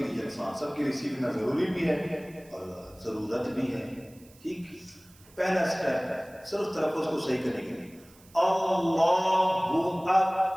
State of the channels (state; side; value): noise; right; hiss, 26 dB below the sound